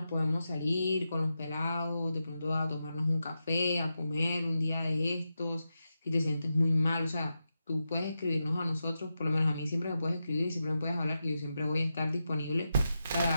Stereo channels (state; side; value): inverted; both; correlation -0.89